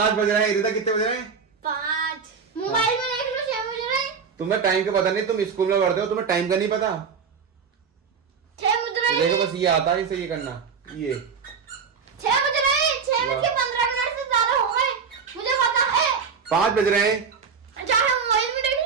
बज रहे हैं। रिदा कितने बज रहे हैं? 5 मोबाइल में देख लो, 6 बज रहे हैं। तुम्हें टाइम का पता नहीं, तुम स्कूल में पढ़ते हो, तुम्हें टाइम का नहीं पता। 6 बज रहे हैं। देखो बस ये आता है इसे ये करना, ये 6 बज रहे हैं। 6 बज के 15 मिनट से ज्यादा हो गए, मुझे पता है। 5 बज रहे हैं। चाहे मोबाइल में देख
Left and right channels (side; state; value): left; quieter; 6.0 dB